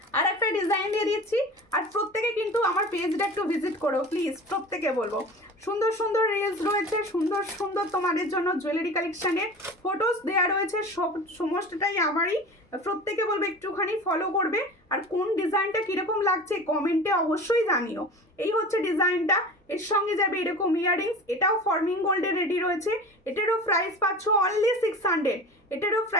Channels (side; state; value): both; normal; correlation 0.36